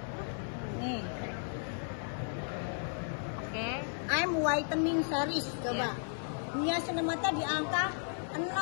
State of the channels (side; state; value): right; silent; 55 dB below the other